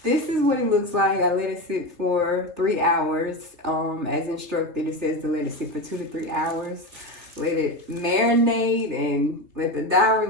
this is what it looks like. I let it sit for 3 hours. As instructed, it says to let it sit for 2 to 3 hours. Let it marinate and let the dye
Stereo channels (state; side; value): late; left; 3.1 ms